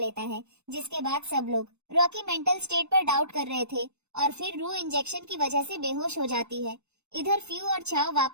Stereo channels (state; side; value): late; left; 0.81 ms